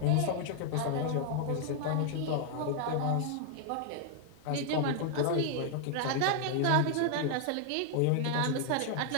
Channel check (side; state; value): both; different; correlation 0.00